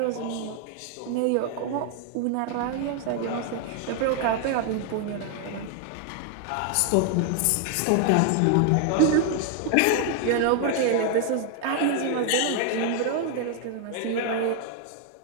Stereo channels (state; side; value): different; both; correlation 0.00